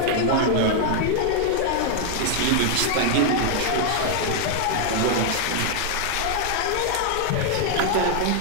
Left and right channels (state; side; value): different; both; correlation 0.00